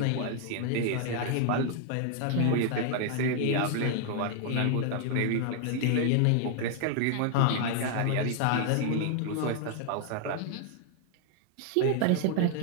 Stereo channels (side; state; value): both; different; correlation 0.00